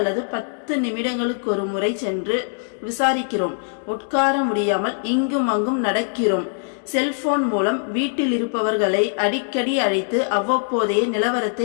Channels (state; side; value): silent; right; digital silence